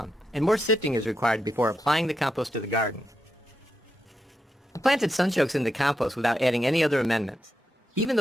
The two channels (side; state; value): both; normal; correlation 0.85